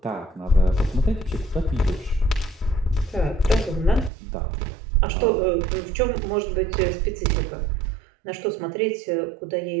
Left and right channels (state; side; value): drops out; left; at 4.1 s